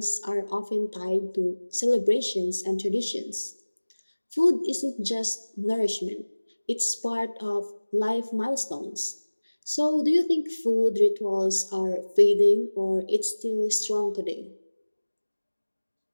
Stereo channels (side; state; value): both; inverted; correlation -1.00